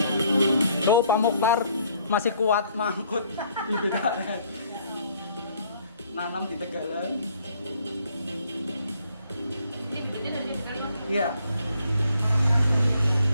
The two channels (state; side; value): inverted; both; correlation -0.65